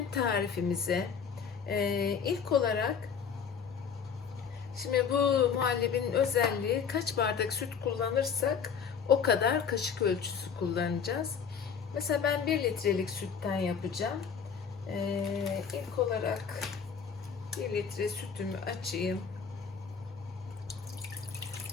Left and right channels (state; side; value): quieter; right; 6.7 dB